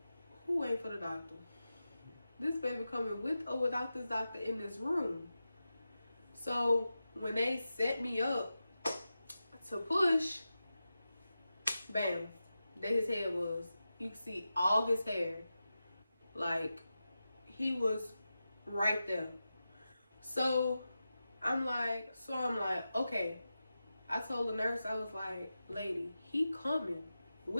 wait for the doctor? This baby coming with or without this doctor in this room. So when they set me up to push, bam, there his head was. You can see all his hair. Like, he was right there. So I'm like, okay. I told the nurse, I was like, lady, he coming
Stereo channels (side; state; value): both; inverted; correlation -0.92